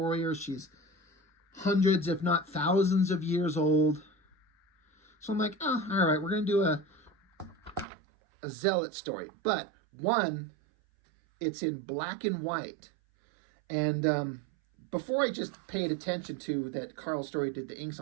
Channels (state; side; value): drops out; left; at 7.9 s